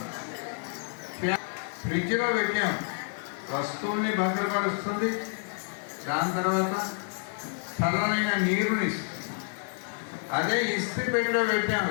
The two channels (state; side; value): silent; right; 59 dB below the other